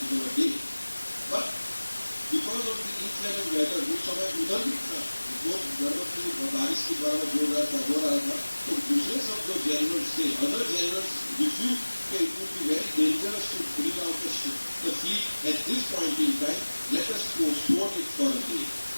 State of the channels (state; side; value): inverted; both; correlation -1.00